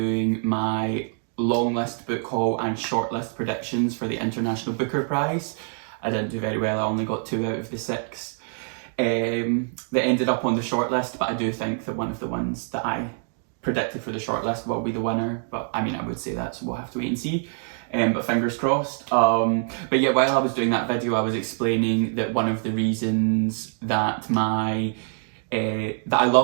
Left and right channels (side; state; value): left; silent; 55 dB below the other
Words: my long list book haul and short list predictions for the International Booker Prize, I didn't do very well. I only got 2 out of the 6 that ended up on the short list, but I do think that one of the ones that I predicted for the shortlist will be the winner, but I mean I would say that, so we'll have to wait and see, but fingers crossed. But yeah, while I was doing that video I was explaining that one of the reasons that that I